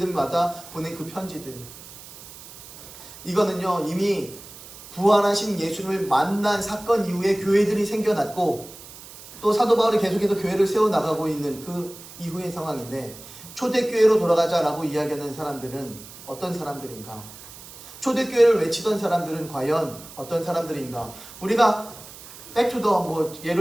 보낸 그 편지들. 이거는요, 이미 부활하신 예수님을 만난 사건 이후에 교회들이 생겨났고, 또 사도 바울이 계속해서 교회를 세워나가고 있는 그 이후의 상황인데, 초대교회로 돌아가자라고 이야기하는 사람들은 어떤 사람들인가? 초대교회를 외치던 사람들은 과연 어떤 사람들인가? 우리가 백투더 뭐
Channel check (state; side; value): noise; right; hiss, 17 dB below the sound